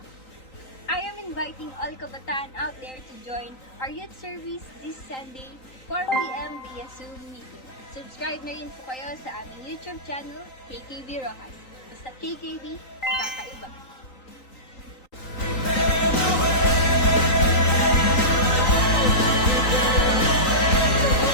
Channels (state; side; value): late; right; 3.9 ms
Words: I am inviting all kabataan out there to join our youth service this Sunday, 4 p.m. via Zoom meeting. Subscribe na rin po kayo sa aming YouTube channel, KKB Rojas. Basta KKB, kakaiba.